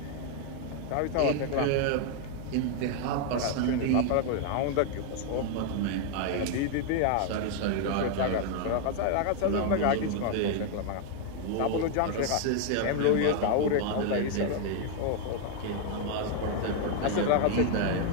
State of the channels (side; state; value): both; different; correlation 0.00